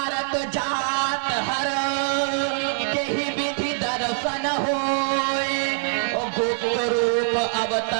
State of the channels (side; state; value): left; silent; 63 dB below the other